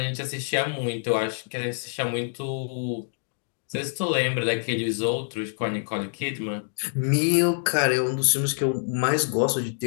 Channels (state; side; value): silent; right; digital silence